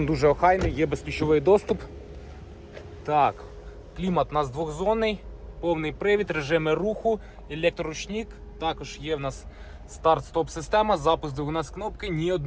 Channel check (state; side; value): identical; both; correlation 1.00